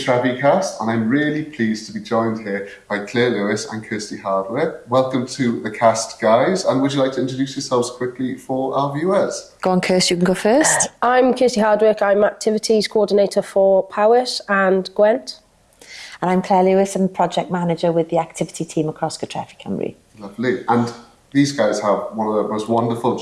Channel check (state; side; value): identical; both; correlation 1.00